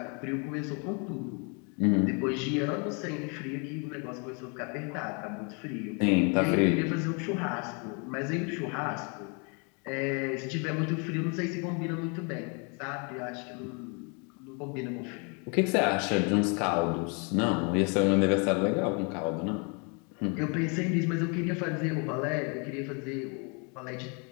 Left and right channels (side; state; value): right; quieter; 34.9 dB